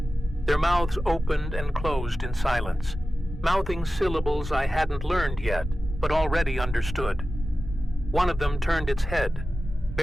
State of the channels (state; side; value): normal; both; correlation 0.94